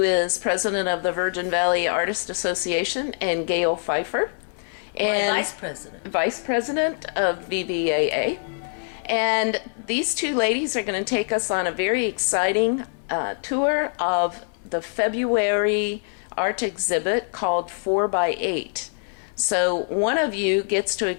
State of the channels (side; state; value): right; silent; digital silence